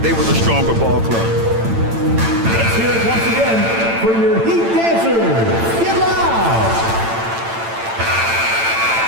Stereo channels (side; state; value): left; late; 8.9 ms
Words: were the stronger ball club. Let's hear it once again for your Heat dancers. Get loud!